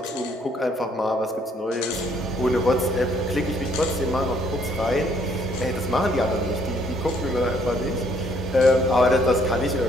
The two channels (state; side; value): normal; both; correlation 0.66